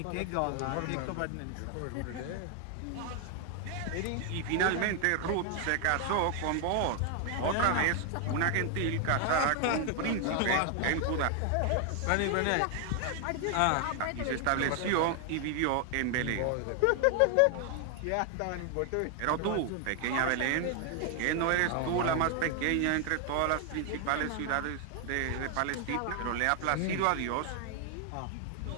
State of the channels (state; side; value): different; both; correlation 0.00